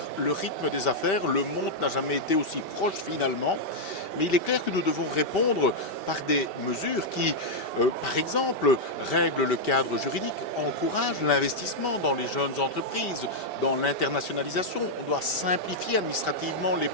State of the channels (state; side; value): late; right; 2.7 ms